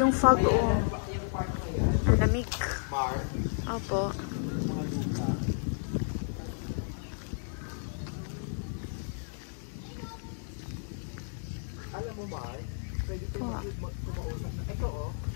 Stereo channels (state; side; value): silent; right; digital silence